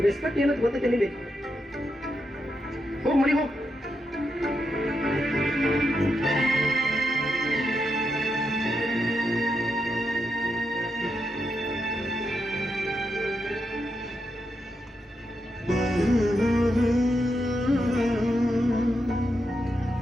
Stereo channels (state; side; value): normal; both; correlation 0.84